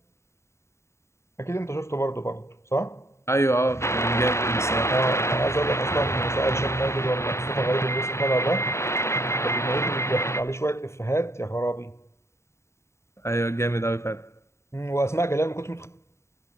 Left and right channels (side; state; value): right; late; 0.13 ms